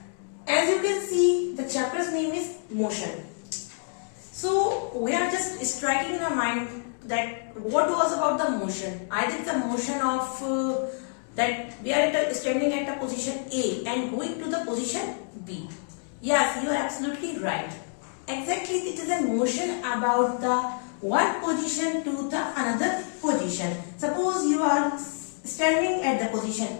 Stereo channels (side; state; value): right; silent; 60 dB below the other